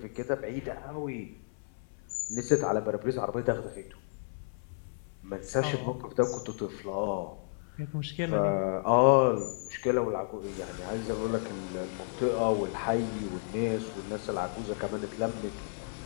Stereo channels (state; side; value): silent; right; 56 dB below the other